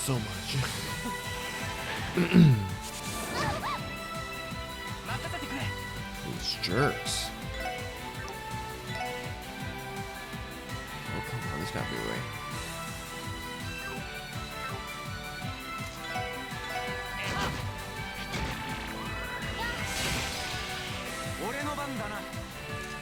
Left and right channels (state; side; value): identical; both; correlation 1.00